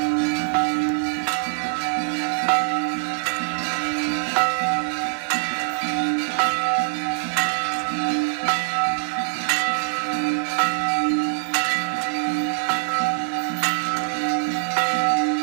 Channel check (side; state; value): left; silent; digital silence